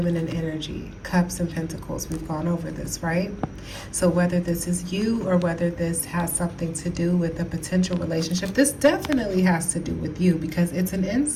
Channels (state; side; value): identical; both; correlation 1.00